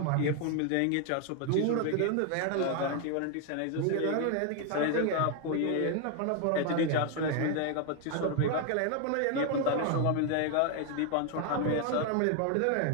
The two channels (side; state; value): both; different; correlation 0.01